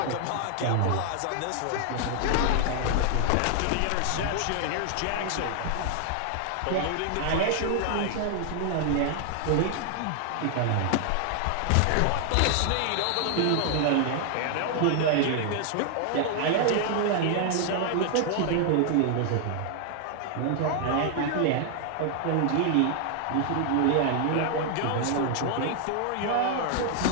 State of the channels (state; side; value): different; both; correlation 0.00